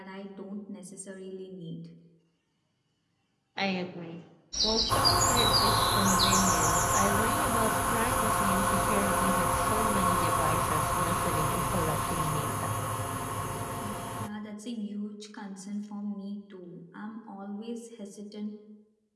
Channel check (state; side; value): identical; both; correlation 1.00